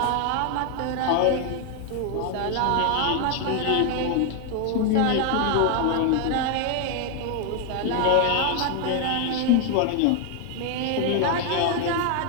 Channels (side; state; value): both; different; correlation 0.01